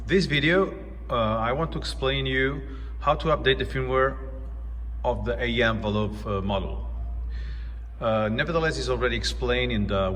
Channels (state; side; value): identical; both; correlation 1.00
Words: this video, I want to explain you how to update the firmware of the AEM envelope model. Nevertheless, it's already explained in the